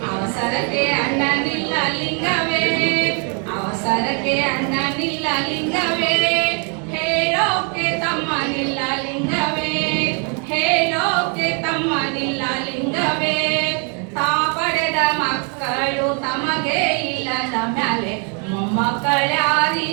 ಅವಸರಕ್ಕೆ ಅಣ್ಣನಿಲ್ಲ ಲಿಂಗವೇ, ಅವಸರಕ್ಕೆ ಅಣ್ಣನಿಲ್ಲ ಲಿಂಗವೇ, ಹೇಳೋಕೆ ತಮ್ಮನಿಲ್ಲ ಲಿಂಗವೇ, ಹೇಳೋಕೆ ತಮ್ಮನಿಲ್ಲ ಲಿಂಗವೇ, ತಾ ಪಡೆದ ಮಕ್ಕಳು ತಮಗೆ ಇಲ್ಲದ ಮ್ಯಾಲೆ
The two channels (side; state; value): left; quieter; 37.8 dB